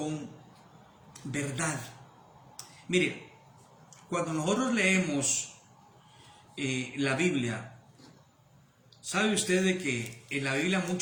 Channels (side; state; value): both; identical; correlation 1.00